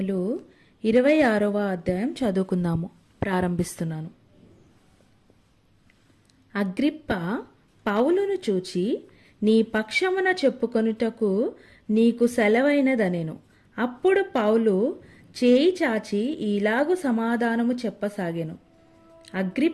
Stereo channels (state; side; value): identical; both; correlation 1.00